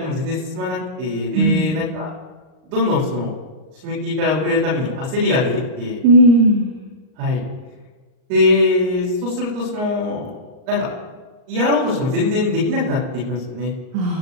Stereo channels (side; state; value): left; late; 38 ms